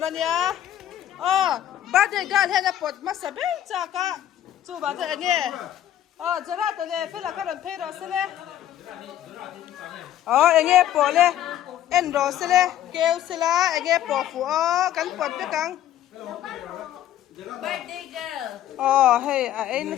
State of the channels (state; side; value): quieter; right; 11.8 dB